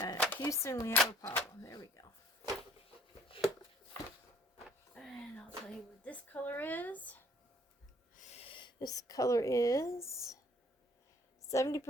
Houston, we have a problem. There we go. And I'll tell you what this color is. This color is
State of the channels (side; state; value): both; normal; correlation 0.59